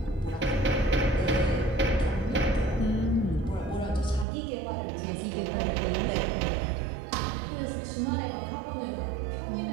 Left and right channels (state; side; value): drops out; left; at 4.2 s